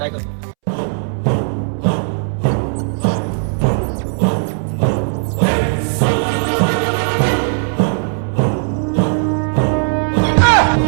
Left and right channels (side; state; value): left; silent; 68 dB below the other